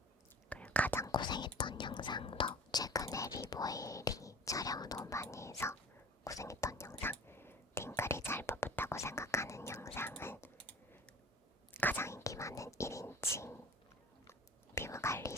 그리고 가장 고생했던 영상도 최근에 리보일이 촬영을 너무 많이 해서 고생했던 영상 팅글이 잘 뽑혔다고 생각하는 영상은 가장 인기 많은 1인칭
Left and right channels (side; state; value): both; normal; correlation 0.42